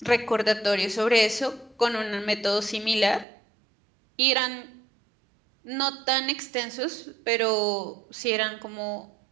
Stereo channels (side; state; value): left; drops out; at 3.2 s